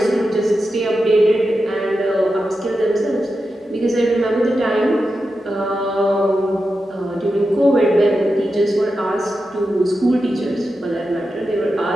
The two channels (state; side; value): normal; both; correlation 0.90